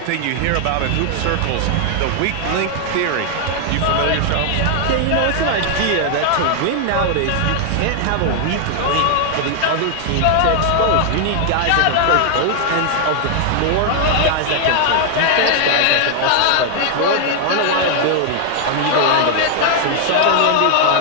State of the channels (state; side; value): different; both; correlation 0.00